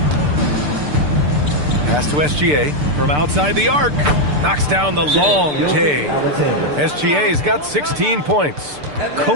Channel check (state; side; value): late; left; 6.8 ms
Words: Pass to SGA from outside the arc. Knocks down the long J. SGA's got 16 points.